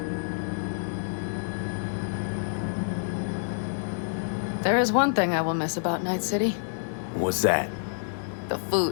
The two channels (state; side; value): silent; right; digital silence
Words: There is one thing I will miss about Night City. What's that? The